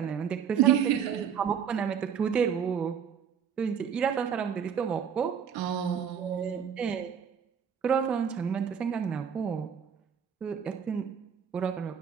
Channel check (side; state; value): left; quieter; 7.7 dB